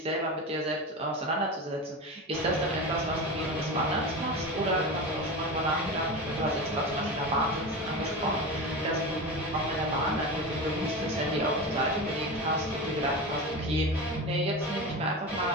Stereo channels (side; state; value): both; normal; correlation 0.25